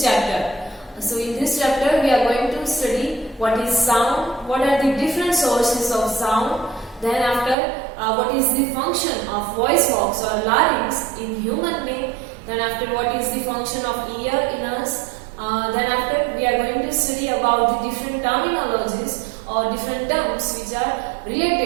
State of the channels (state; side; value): drops out; left; at 7.6 s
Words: chapter. So in this chapter we are going to study what is sound, what are the different sources of sound, then after what is the function of voice box or larynx in human being, then after what is the function of ear in us, then after we are going to study about the different terminologies or different terms which are